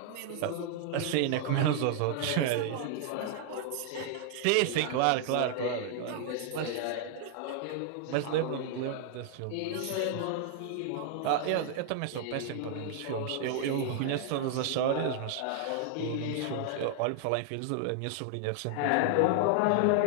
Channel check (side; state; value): both; different; correlation 0.00